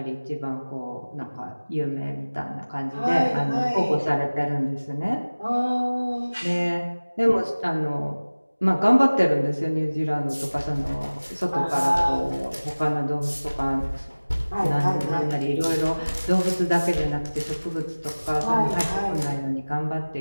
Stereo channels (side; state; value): both; inverted; correlation -1.00